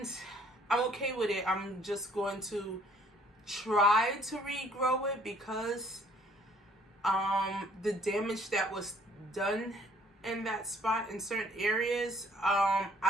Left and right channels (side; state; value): both; normal; correlation 0.60